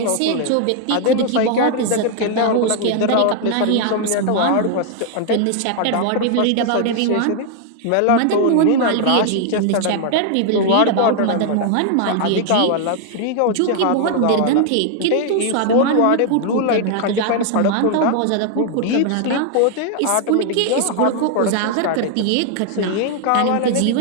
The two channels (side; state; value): both; different; correlation 0.00